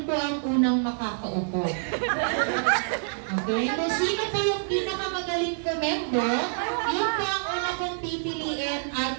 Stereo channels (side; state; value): left; silent; digital silence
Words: po ang unang makakaupo. Okay? Kung sino po yung pinakamagaling komendo, yun po ang una kong pipiliin